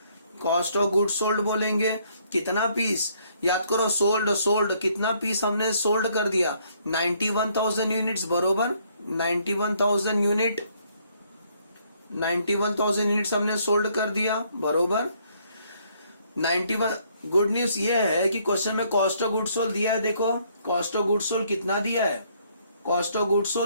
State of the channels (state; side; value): inverted; both; correlation -0.67